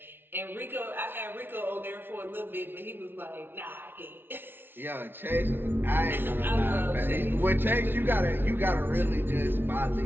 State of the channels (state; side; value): late; left; 0.10 ms